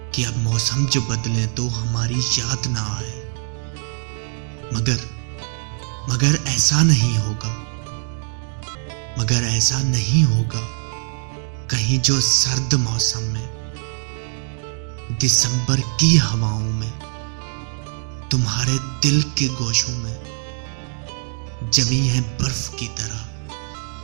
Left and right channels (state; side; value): silent; left; 59 dB below the other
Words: कि अब मौसम जो बदले तो हमारी याद ना आए, मगर ऐसा नहीं होगा, मगर ऐसा नहीं होगा। कहीं जो सर्द मौसम में, दिसंबर की हवाओं में, तुम्हारे दिल के गोशों में जमी है बर्फ की तरह,